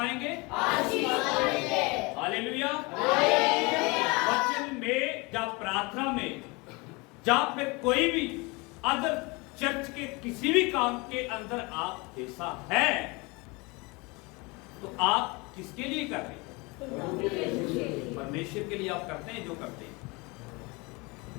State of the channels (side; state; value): right; quieter; 26.6 dB